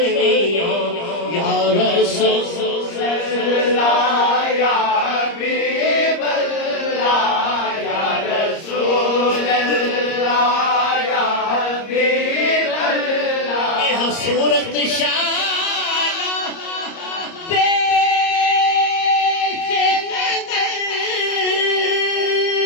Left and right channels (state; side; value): late; right; 30 ms